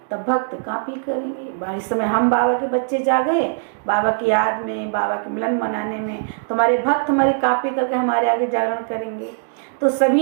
तब भक्त कापी करेंगे। इस समय हम बाबा के बच्चे जागे, बाबा की याद में, बाबा के मिलन मनाने में, तुम्हारे भक्त हमारी कापी करके हमारे आगे जागरण करेंगे। तो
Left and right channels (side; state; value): left; silent; digital silence